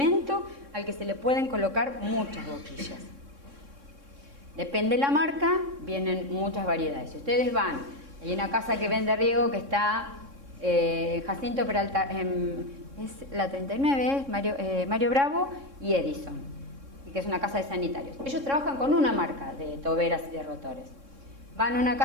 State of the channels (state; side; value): late; left; 3.6 ms